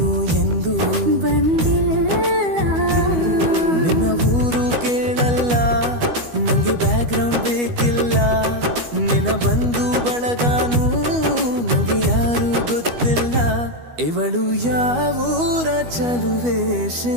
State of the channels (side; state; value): left; late; 12 ms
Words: ಎಂದು ಬಂದಿಲ್ಲ. ನಿನ್ನ ಊರು ಕೇಳಲ್ಲ, ನಂಗೆ ಬ್ಯಾಕ್ಗ್ರೌಂಡ್ ಬೇಕಿಲ್ಲ. ನಿನ್ನ ಬಂಧು ಬಳಗಾನು ನಂಗೆ ಯಾರು ಗೊತ್ತಿಲ್ಲ. ಇವಳು ಯಾವೂರ ಚಲುವೆ